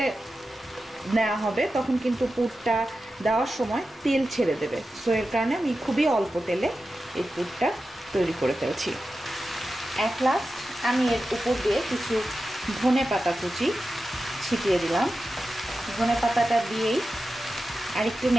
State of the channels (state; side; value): normal; both; correlation 0.92